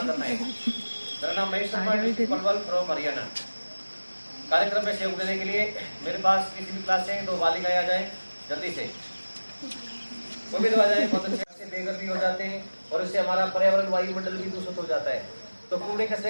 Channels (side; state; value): both; inverted; correlation -1.00